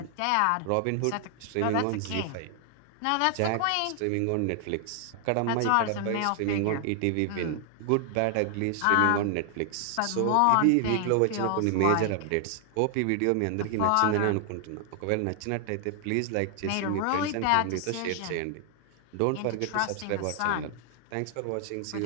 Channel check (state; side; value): different; both; correlation 0.00